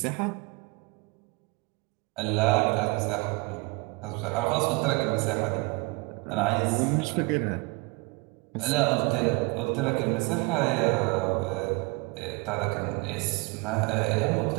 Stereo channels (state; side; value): quieter; left; 27.5 dB